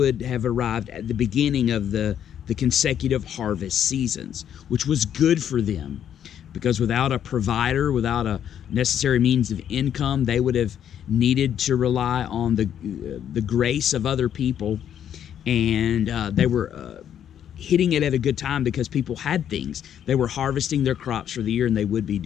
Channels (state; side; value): quieter; right; 9.6 dB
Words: have arrived at the beginning of the consecutive harvest seasons, which was good for them, because without a provider, without a necessary means of income, they would have needed to rely on the grace of other people. And they were hitting it at a good time because people had things. They were harvesting their crops for the year, and they would be